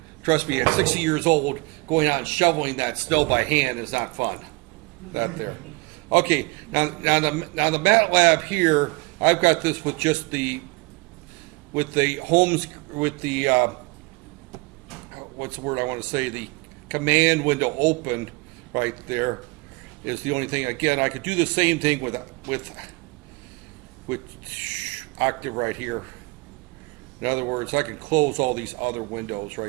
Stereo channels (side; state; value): left; quieter; 25.6 dB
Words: trust me, at 60 years old, going out and shoveling that snow by hand is not fun. That there. Okay, now the MATLAB here, I've got this with just with the what's the word I want to say? The command window open right there is the only thing. Again, I could do the same thing with Octave right here. In other words, I can close all these other windows